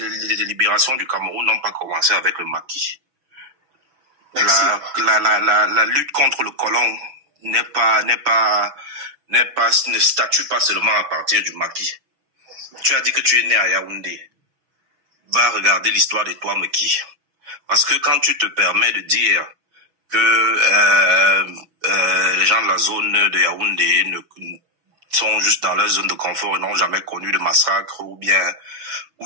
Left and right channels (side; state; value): left; late; 6.2 ms